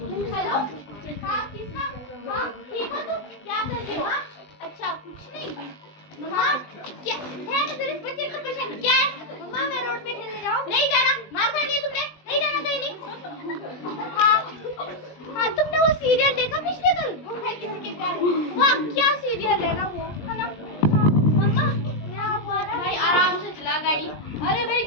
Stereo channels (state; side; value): late; right; 20 ms